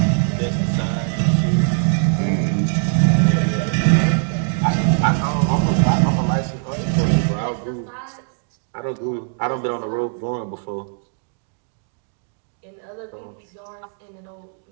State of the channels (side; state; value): left; silent; digital silence